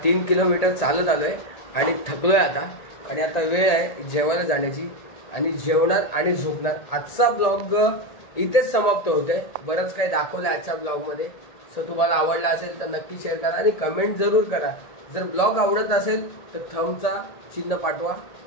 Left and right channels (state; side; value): late; right; 1.8 ms